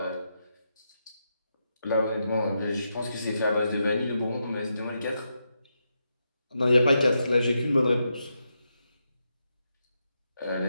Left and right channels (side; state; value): both; inverted; correlation -0.84